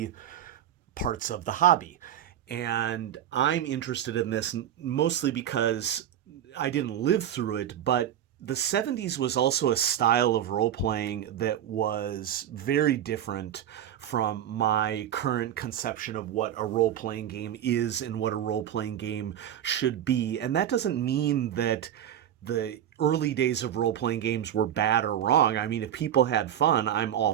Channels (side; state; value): left; quieter; 10.5 dB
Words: parts of the hobby. And I'm interested in this mostly because I didn't live through it, but the '70s was also a style of role playing that was very different from my current conception of what a role playing game is and what a role playing game should be. And that doesn't mean that the early days of role playing games were bad or wrong. I mean, if people had fun, I'm all